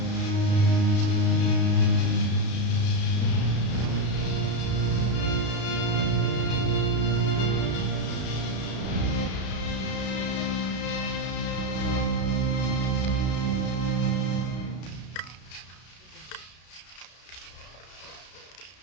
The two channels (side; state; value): right; late; 32 ms